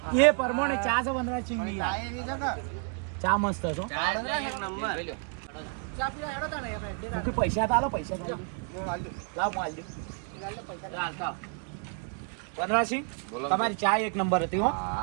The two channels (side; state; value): left; quieter; 39.8 dB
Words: એ પ્રમાણે ચા છે વનરાજસિંહ ની ચા એવી છે કે ચા મસ્ત છે હો. ચા એટલે એક નંબર ચા પીવા હેડો તાણે આપણે. મુખી પૈસા તાલો પૈસા તાલો હું હાલજો. લાવ હું આલજો ચાલતા વનરાજસિંહ બોલો. તમારી ચા એક નંબર હતી હો